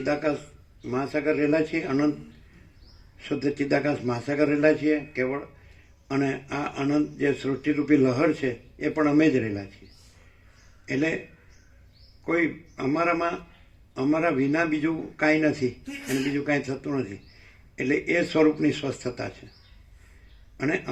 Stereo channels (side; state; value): both; identical; correlation 1.00